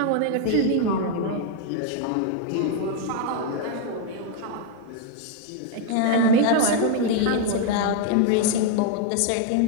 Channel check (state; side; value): different; both; correlation 0.00